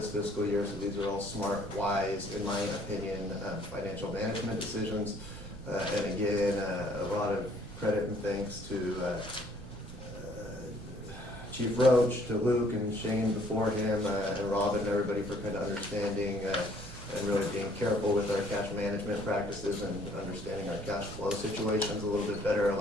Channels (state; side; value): noise; right; rumble, 13 dB below the sound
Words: fiscal year. So these are all smart, wise, in my opinion, financial management decisions. And again, a lot of credit and thanks to Chief Roach, to Luke and Shane before him, and Robin and everybody for kind of understanding and really being careful with our cash management practices and understanding our cash flow situations a little bit better,